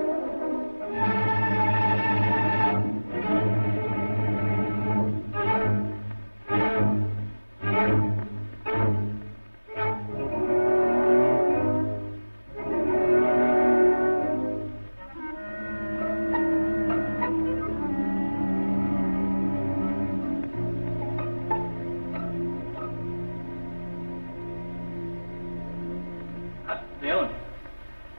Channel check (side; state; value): both; inverted; correlation -1.00